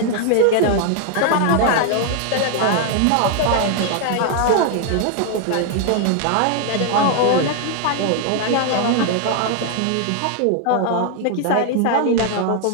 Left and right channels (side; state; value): both; different; correlation 0.00